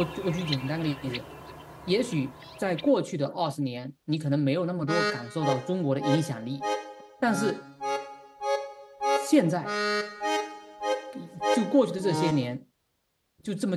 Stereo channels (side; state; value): both; identical; correlation 1.00